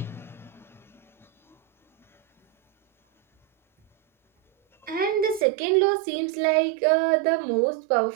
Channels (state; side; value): drops out; left; at 5.5 s